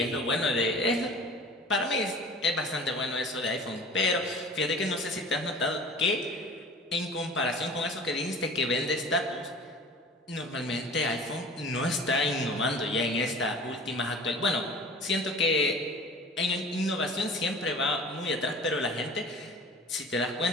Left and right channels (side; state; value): both; normal; correlation 0.42